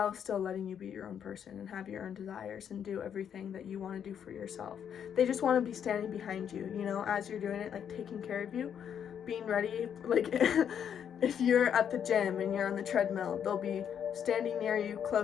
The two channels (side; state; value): right; quieter; 8.5 dB